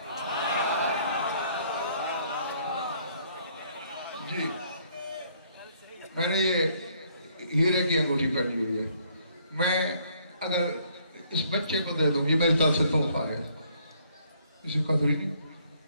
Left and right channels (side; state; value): both; inverted; correlation -0.65